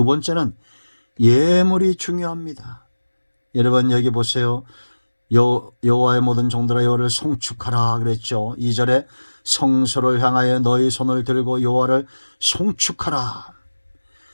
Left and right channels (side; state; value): both; inverted; correlation -1.00